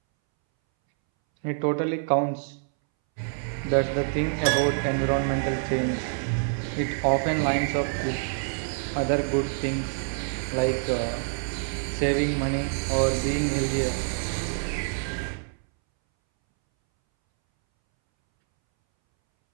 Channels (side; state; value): left; silent; 61 dB below the other